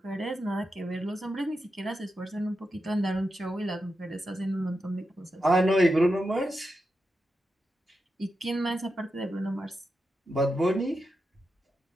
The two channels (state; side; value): normal; both; correlation 0.88